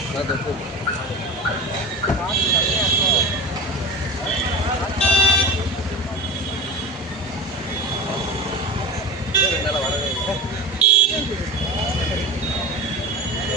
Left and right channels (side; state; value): both; normal; correlation 0.30